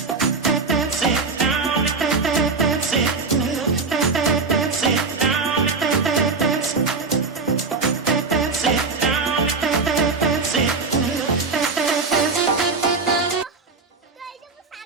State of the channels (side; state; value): left; quieter; 4.3 dB